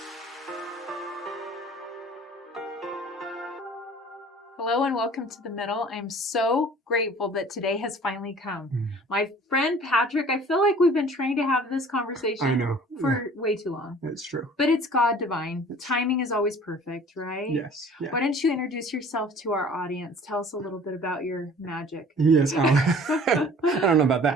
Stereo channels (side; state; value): both; normal; correlation 0.48